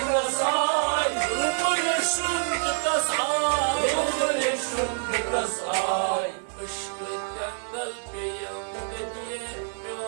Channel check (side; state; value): left; silent; 60 dB below the other